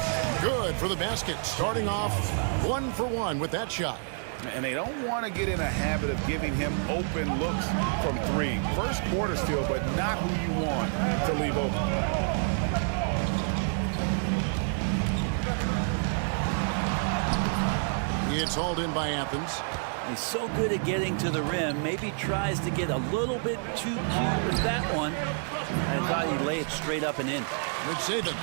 Good for the basket. Starting off 1 for 1 with that shot. And they don't want to get in a habit of giving him open looks from three. First quarter still, but not who you want to leave open. It's hauled in by Athens. He's so good at getting to the rim. Maybe tries to get a little bit too cute with that one. I thought he'd lay it straight up and in. It's Saban.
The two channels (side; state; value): left; silent; 57 dB below the other